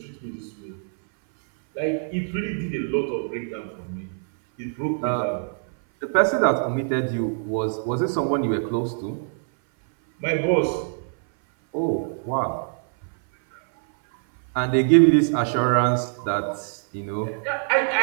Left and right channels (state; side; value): silent; left; 58 dB below the other